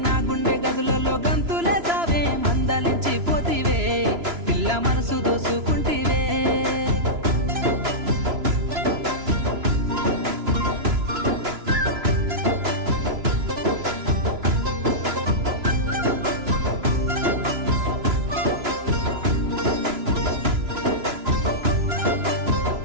నా గుండె గదులలో గంతులే సావే మందలించి పోతివే పిల్ల మనసు దోసుకుంటివే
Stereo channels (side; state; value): left; late; 2.9 ms